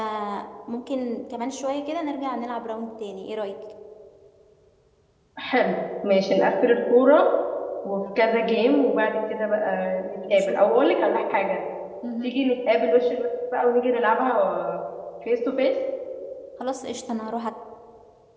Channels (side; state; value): both; identical; correlation 1.00